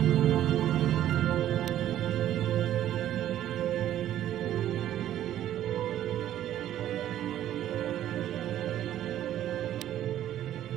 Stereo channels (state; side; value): quieter; left; 12.1 dB